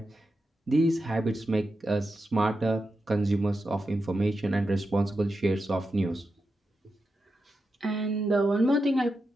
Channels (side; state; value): both; normal; correlation 0.88